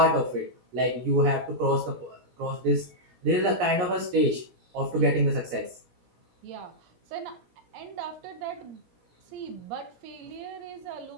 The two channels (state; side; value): late; left; 17 ms